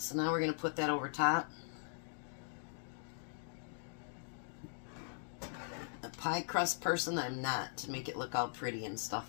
now we're going to put that over top. A pie crust person, I'm not, to make it look all pretty and stuff.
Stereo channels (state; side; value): silent; right; digital silence